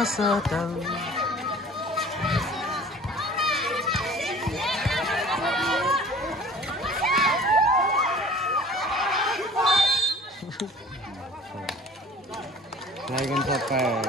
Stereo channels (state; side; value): normal; both; correlation 0.46